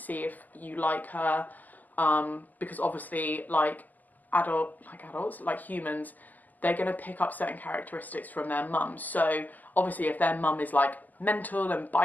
if you like her. Because obviously like adults, like humans, they're going to pick up certain characteristics from their mum. So obviously if their mum is like mental and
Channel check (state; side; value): late; right; 0.082 ms